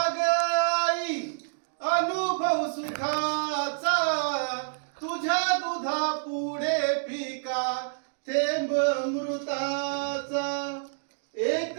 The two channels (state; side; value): silent; left; digital silence